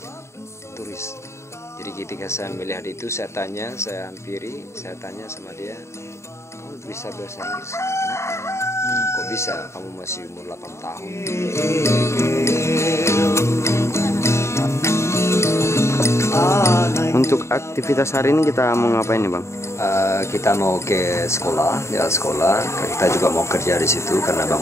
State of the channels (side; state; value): right; late; 0.13 ms